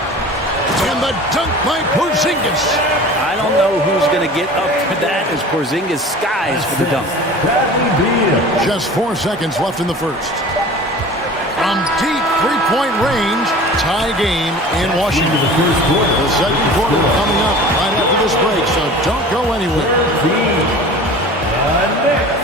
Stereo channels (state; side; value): normal; both; correlation 0.40